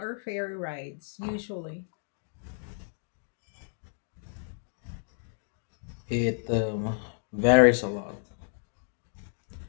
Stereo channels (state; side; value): silent; right; digital silence